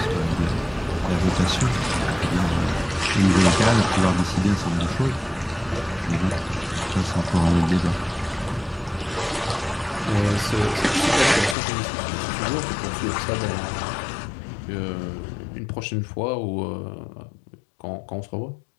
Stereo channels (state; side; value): drops out; right; at 11.6 s